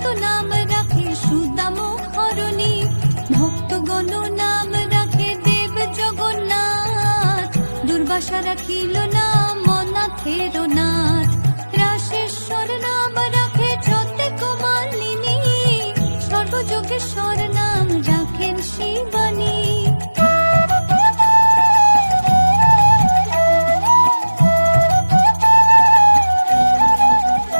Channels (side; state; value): both; inverted; correlation -1.00